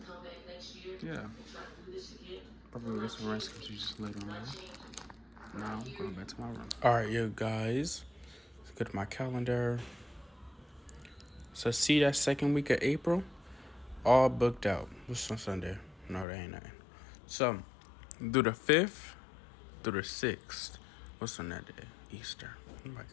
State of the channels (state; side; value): drops out; right; at 16.2 s